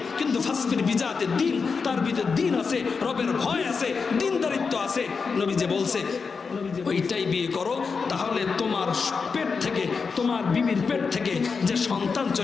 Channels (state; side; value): quieter; right; 5.1 dB